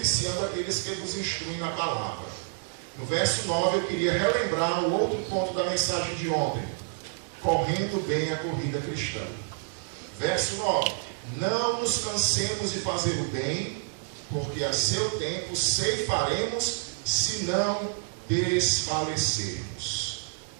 aqueles que vos instruem na palavra. No verso 9 eu queria relembrar o outro ponto da mensagem de ontem: correndo bem a corrida cristã. Verso 9: não nos cansemos de fazer o bem, porque a seu tempo ceifaremos, se não desfalecermos.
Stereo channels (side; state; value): left; silent; 59 dB below the other